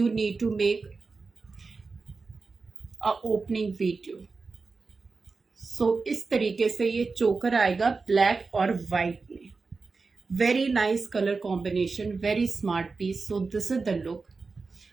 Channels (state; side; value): quieter; left; 4.2 dB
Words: need to make a opening video. So इस तरीके से ये चोकर आएगा ब्लैक और व्हाइट में. Very nice colour combination, very smart piece. So this is the look.